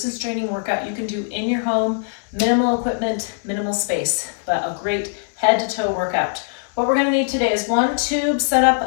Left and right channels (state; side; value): silent; right; 65 dB below the other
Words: training workout you can do in your home. Minimal equipment, minimal space, but a great head to toe workout. What we're going to need today is one tube set